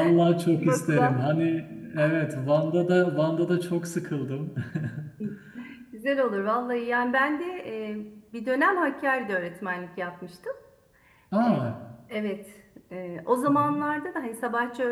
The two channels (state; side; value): identical; both; correlation 1.00